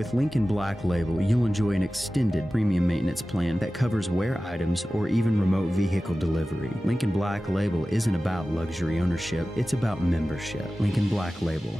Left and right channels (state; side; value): normal; both; correlation 0.95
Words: Lincoln Black Label, you'll enjoy an extended premium maintenance plan that covers wear items or even remote vehicle delivery. Lincoln Black Label isn't about luxury ownership, it's about membership. Lincoln Black Label,